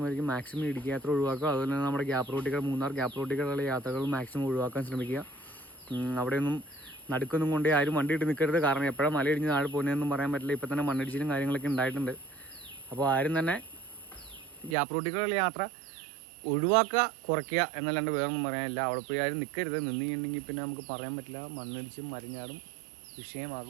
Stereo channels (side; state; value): left; drops out; at 14.8 s